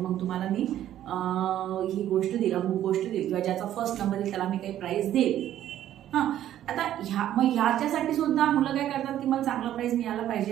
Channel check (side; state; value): left; quieter; 11.9 dB